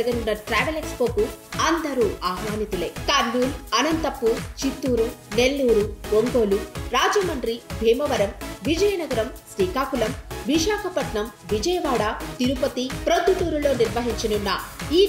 ట్రావెల్ ఎక్స్పోకు అందరూ ఆహ్వానితులే. కర్నూలు, అనంతపూర్, చిత్తూరు, నెల్లూరు, ఒంగోలు, రాజమండ్రి, భీమవరం, విజయనగరం, శ్రీకాకుళం, విశాఖపట్నం, విజయవాడ, తిరుపతి, ప్రొద్దుటూరులో నిర్వహించనున్న ఈ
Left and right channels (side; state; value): both; identical; correlation 1.00